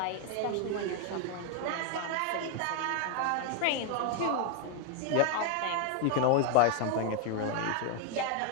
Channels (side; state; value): both; different; correlation 0.01